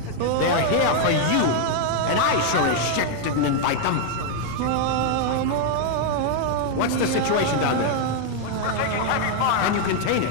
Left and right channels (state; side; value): different; both; correlation 0.00